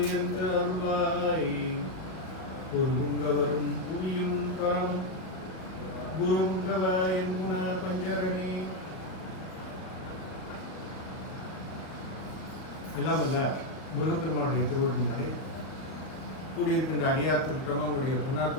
என்று அருள்வாய். குருங்க வரும் புவியும் பரம் குருங்கவ என் குண பஞ்சரணி. எல்லாம் வல்ல முருகப்பெருமானுடைய திருவள்ளினாலே கூடியிருக்கின்ற அடியார் திருட்டமாக உங்களுடைய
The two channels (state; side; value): late; right; 38 ms